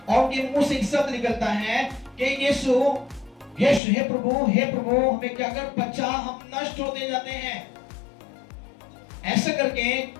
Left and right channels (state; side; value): drops out; right; at 3.8 s